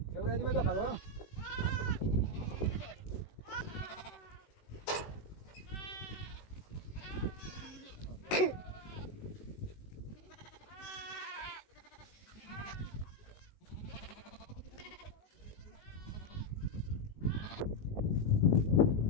یه برای دیگه بخواد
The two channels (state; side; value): late; right; 19 ms